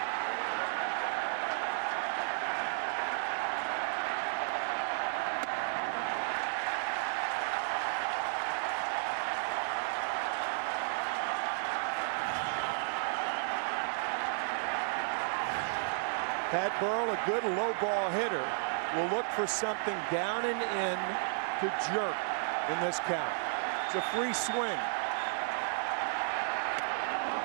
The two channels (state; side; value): silent; left; digital silence